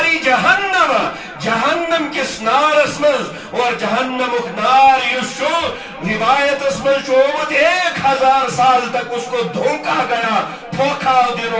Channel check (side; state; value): both; identical; correlation 1.00